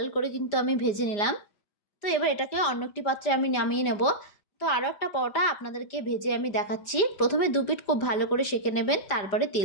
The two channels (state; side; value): late; right; 5.0 ms